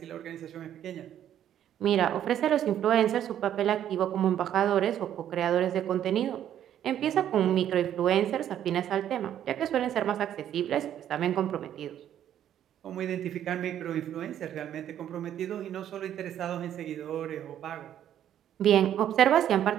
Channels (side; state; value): left; quieter; 10.7 dB